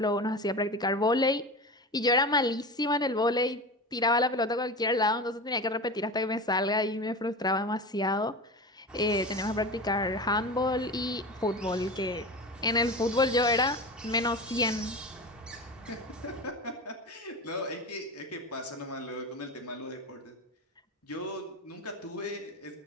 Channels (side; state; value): both; normal; correlation 0.28